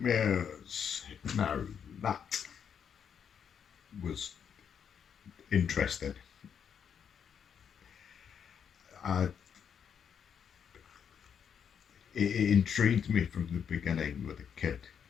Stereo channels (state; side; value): quieter; right; 7.7 dB